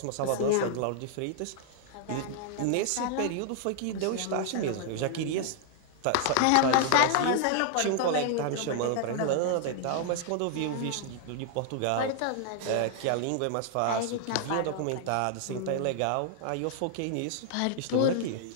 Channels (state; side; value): different; both; correlation 0.00